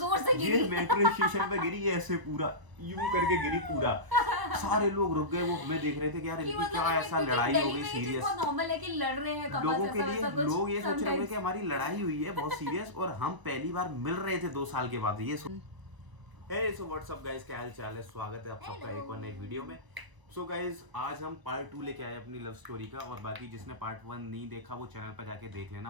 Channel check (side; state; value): left; late; 1.0 ms